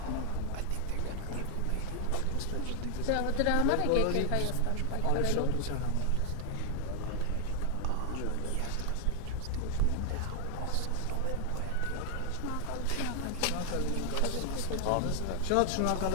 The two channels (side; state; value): both; different; correlation 0.00